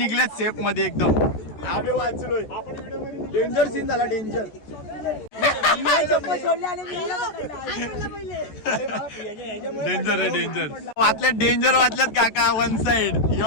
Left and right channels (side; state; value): right; late; 14 ms